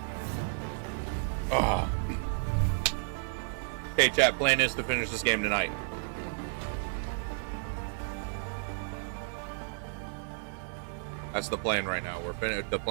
Ah. Okay, chat. Plan is to finish this game tonight. That's the plan right now. The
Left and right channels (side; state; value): left; silent; 56 dB below the other